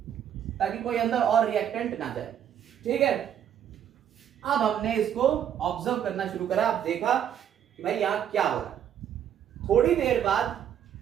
ताकि कोई अंदर और रिएक्टेंट ना जाए। ठीक है, अब हमने इसको ऑब्जर्व करना शुरू करा। अब देखा कि भाई यहां क्या हो रहा है। थोड़ी देर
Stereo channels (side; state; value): left; quieter; 9.6 dB